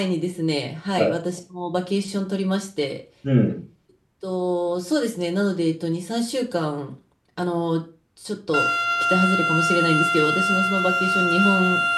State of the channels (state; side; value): identical; both; correlation 1.00